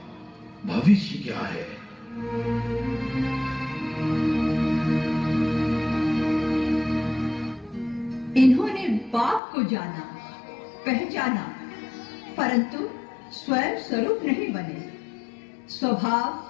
भविष्य क्या है? इन्होंने बाप को जाना, पहचाना, परंतु स्वयं स्वरूप नहीं बने।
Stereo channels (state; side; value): drops out; right; at 9.4 s